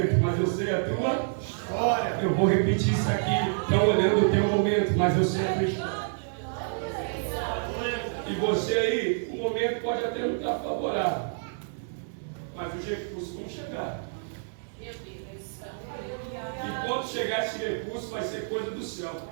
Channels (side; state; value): left; silent; digital silence